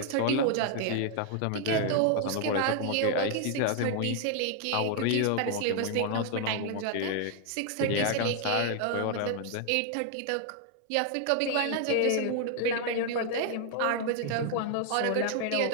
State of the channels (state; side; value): different; both; correlation 0.00